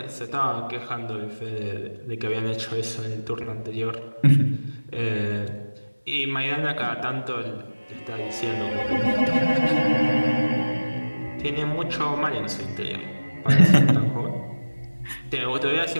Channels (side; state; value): both; inverted; correlation -1.00